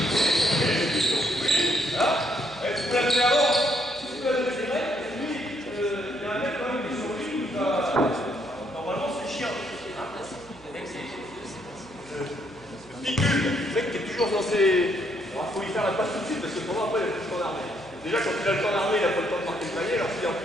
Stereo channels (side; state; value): right; noise; hum, 24 dB below the sound